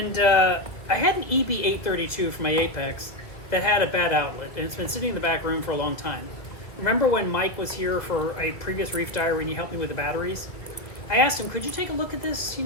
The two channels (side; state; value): right; late; 1.7 ms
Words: I had an EB-832 for my Apex that had a bad outlet, and it's been sitting in the back room for a long time. Remember when Mike was here for a previous Reef Diary and he helped me with the batteries? I asked him, could you take a look at this? You